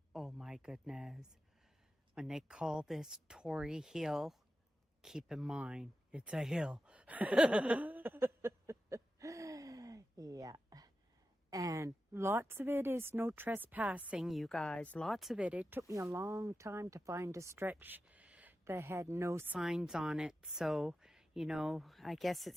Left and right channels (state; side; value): normal; both; correlation 0.92